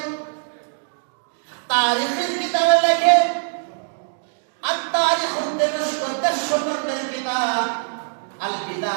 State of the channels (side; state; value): left; silent; digital silence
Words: তারিখের কিতাবে লেখে, আর তারিখুদ দিমাশক 10 খণ্ডের কিতাব আল